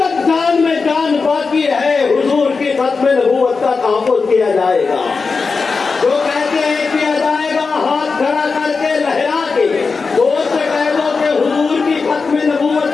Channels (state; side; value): quieter; right; 4.6 dB